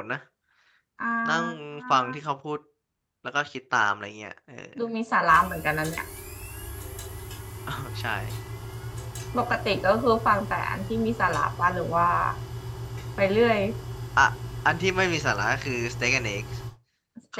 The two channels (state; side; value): identical; both; correlation 1.00